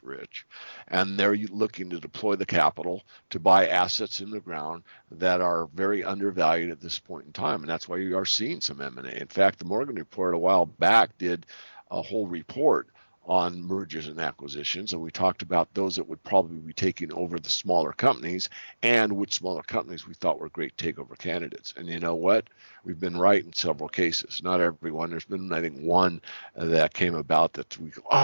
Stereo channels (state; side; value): inverted; both; correlation -1.00